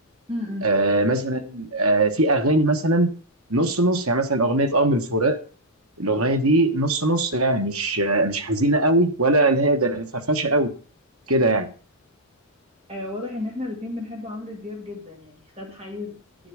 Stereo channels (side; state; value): both; normal; correlation -0.09